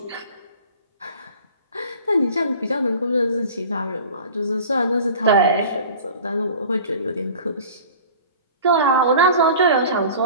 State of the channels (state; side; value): inverted; both; correlation -0.42